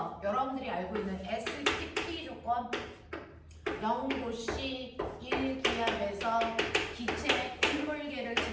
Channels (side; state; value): both; identical; correlation 1.00